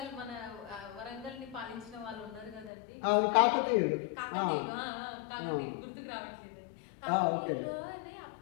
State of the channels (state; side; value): drops out; right; at 2.7 s